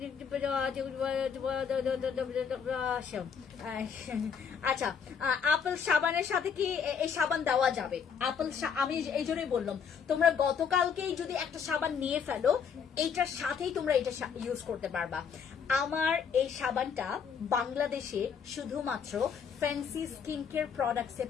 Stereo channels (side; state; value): right; quieter; 6.8 dB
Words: আচ্ছা আপেল সাবানের সাথে কি এই সাবান দেওয়া যাবে? আমি এই জন্যই বললাম, তোমরা গতকালকেই যদি একটা সাবান নিয়ে ফেলো, এইটার সাথেই তোমরা এটা ইউজ করতে পারবা। আমার এই সাবানটা বাংলাদেশে শুধুমাত্র ফ্যান্সি স্কিন কেয়ার প্রোডাক্টসে